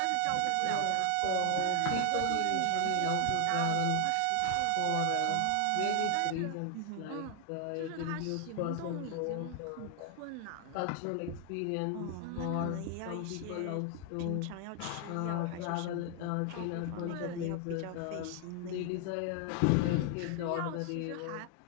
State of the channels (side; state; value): both; different; correlation 0.00